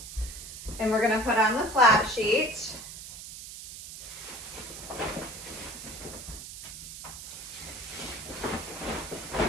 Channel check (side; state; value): right; noise; hiss, 11 dB below the sound